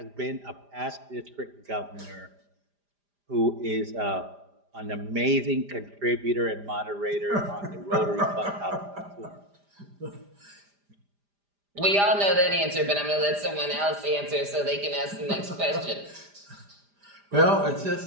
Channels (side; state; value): left; late; 5.0 ms